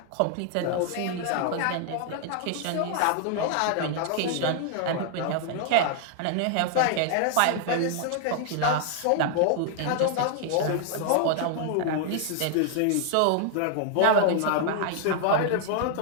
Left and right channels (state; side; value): different; both; correlation 0.00